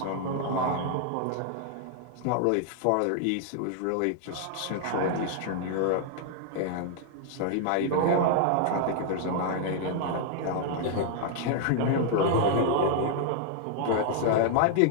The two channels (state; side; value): different; both; correlation 0.00